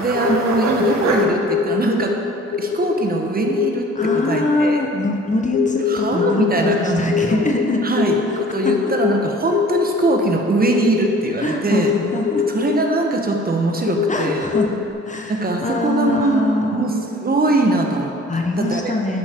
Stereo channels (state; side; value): normal; both; correlation 0.49